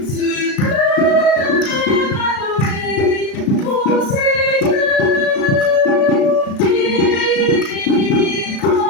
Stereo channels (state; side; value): late; right; 36 ms